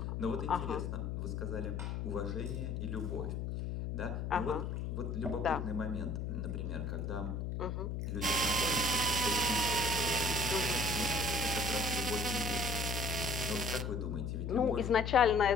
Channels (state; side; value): noise; left; hum, 3 dB below the sound